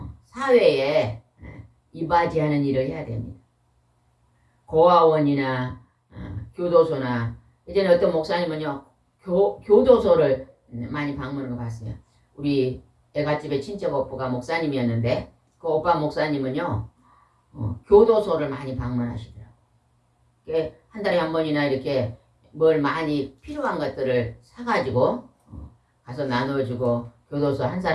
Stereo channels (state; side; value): identical; both; correlation 1.00